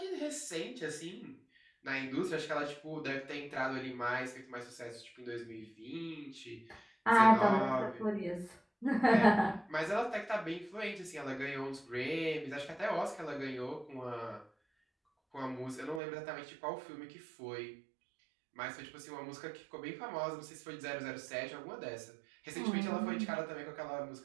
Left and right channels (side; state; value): left; drops out; at 16.0 s